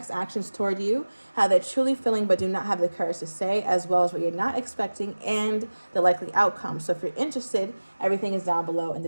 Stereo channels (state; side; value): inverted; both; correlation -1.00